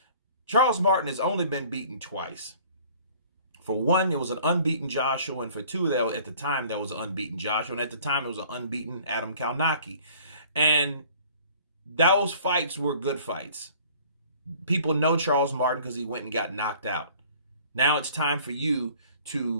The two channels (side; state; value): both; inverted; correlation -0.52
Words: Charles Martin has only been beaten twice. For one, it was an unbeaten Joshua, and for two, at the time, there was an unbeaten Joshua, and at the time, it was an unbeaten Adam Kalnacki. And those fights were good fights. People know Charles Martin because he went and got knocked out. Now it's time for you